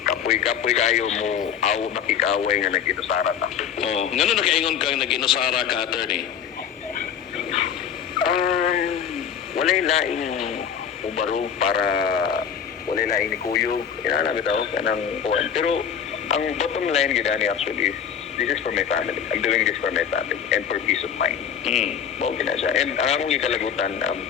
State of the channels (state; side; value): quieter; right; 8.1 dB